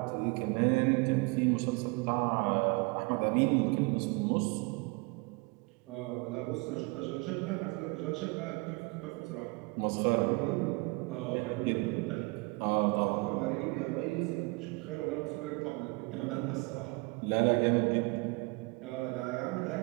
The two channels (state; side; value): quieter; left; 27.7 dB